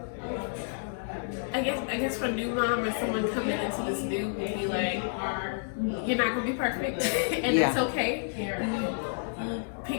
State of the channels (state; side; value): silent; right; digital silence